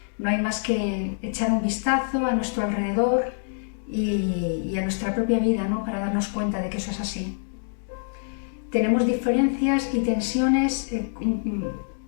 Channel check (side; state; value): right; silent; digital silence